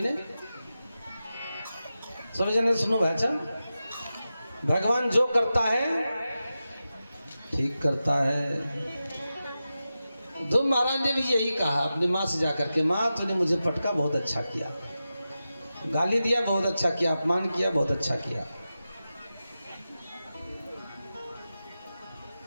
सभी जने सुनो भाई। अच्छा, भगवान जो करता है ठीक करता है। ध्रुव महाराज ने भी यही कहा अपनी माँ से जाकर के, माँ तूने मुझे पटका, बहुत अच्छा किया, गाली दिया, बहुत अच्छा किया, अपमान किया, बहुत अच्छा किया।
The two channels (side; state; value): both; inverted; correlation -0.92